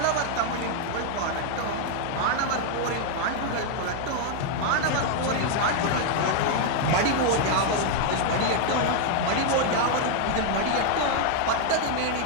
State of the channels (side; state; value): both; different; correlation 0.00